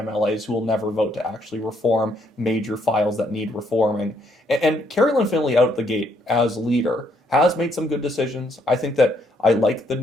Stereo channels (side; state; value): both; normal; correlation 0.71